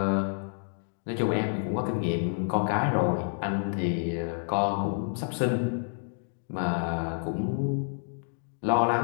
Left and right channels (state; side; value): silent; right; digital silence